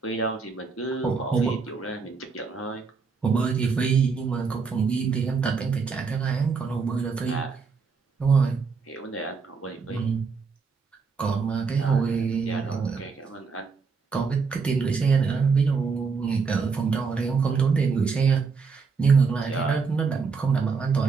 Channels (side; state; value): left; quieter; 5.1 dB